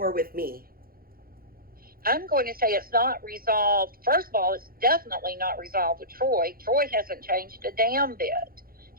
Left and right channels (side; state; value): left; late; 0.43 ms